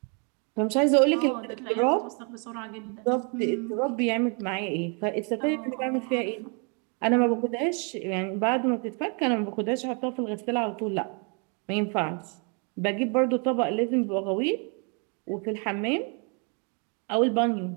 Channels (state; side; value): quieter; left; 36.3 dB